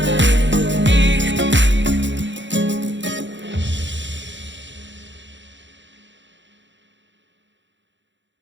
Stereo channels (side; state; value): left; late; 0.54 ms